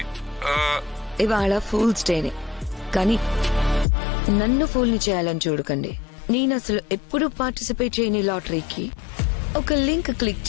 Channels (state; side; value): drops out; right; at 3.9 s